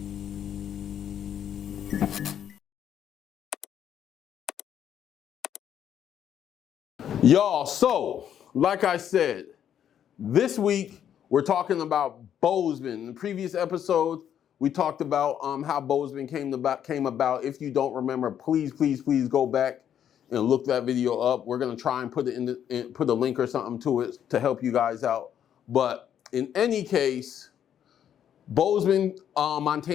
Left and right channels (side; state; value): right; quieter; 9.5 dB